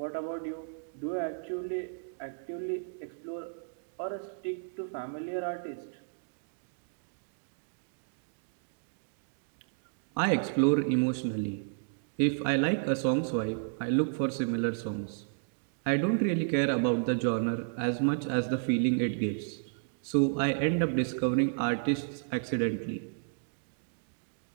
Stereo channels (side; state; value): left; silent; digital silence